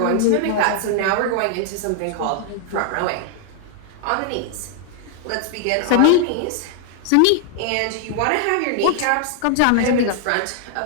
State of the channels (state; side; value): different; both; correlation 0.00